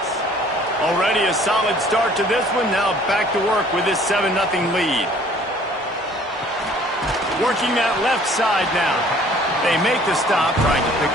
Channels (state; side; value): normal; both; correlation 0.55